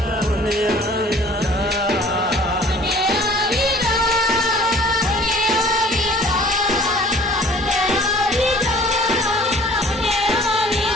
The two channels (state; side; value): normal; both; correlation 0.51